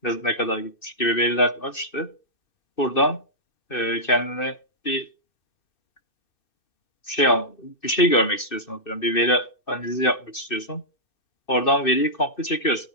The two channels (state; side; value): late; right; 2.6 ms